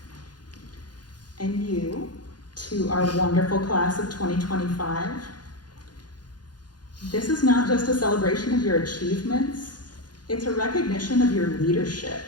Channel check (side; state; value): right; late; 0.70 ms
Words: And you, to our wonderful class of 2025, this is not just a celebration of your achievements, it's a recognition of your leadership.